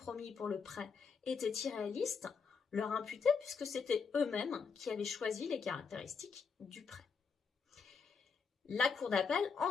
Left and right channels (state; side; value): quieter; right; 5.7 dB